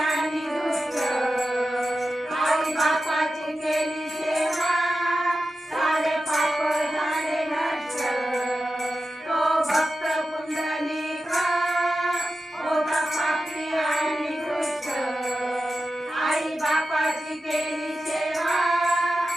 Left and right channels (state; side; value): normal; both; correlation 0.92